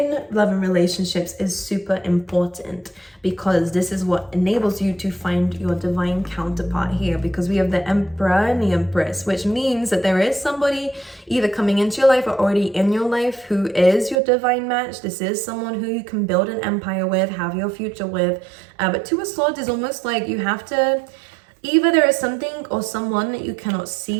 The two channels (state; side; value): drops out; left; at 14.2 s